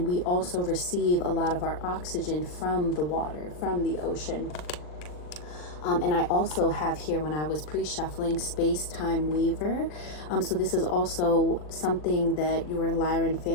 we also receive a lot of our oxygen from the water, from the ocean. And I also have here, when I was pre-shuffling, Space-Time Weaver. So this is also something that your Lyran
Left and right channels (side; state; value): right; late; 39 ms